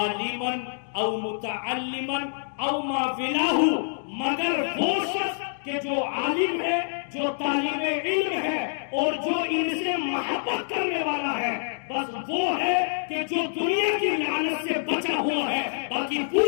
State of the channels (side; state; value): right; silent; digital silence